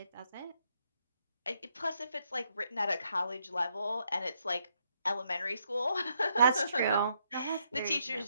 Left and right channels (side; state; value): both; inverted; correlation -0.75